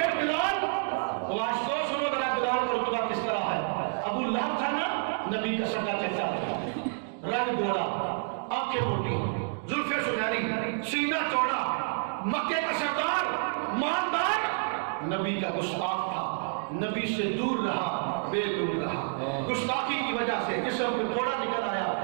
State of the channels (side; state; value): left; silent; digital silence